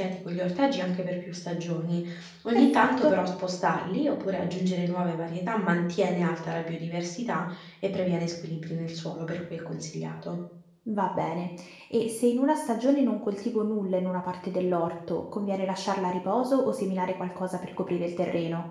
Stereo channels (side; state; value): both; identical; correlation 1.00